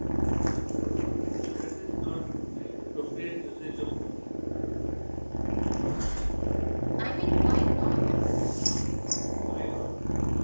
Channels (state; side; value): inverted; both; correlation -1.00